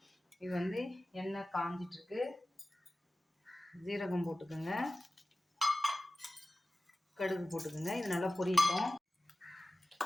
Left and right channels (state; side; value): normal; both; correlation 0.95